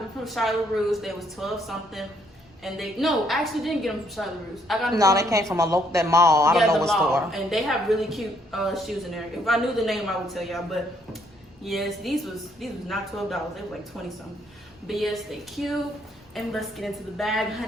from Charlotte Russe. They was 12-something. And I actually didn't get them from Charlotte Russe. I got them they came from that mall. I don't know what store. And they have really cute shoes in there. If I knew the name, I would tell y'all. But yes, these was not $12. They were like 20-something. But yes, they cute. And let's get into the bag,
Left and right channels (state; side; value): normal; both; correlation 0.70